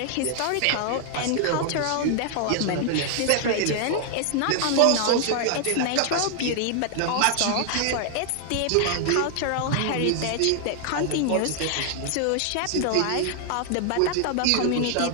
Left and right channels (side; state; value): both; different; correlation 0.00